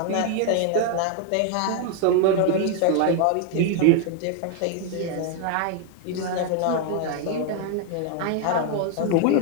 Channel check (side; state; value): both; different; correlation 0.00